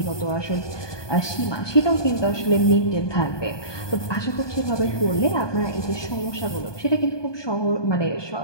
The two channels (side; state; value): right; late; 1.2 ms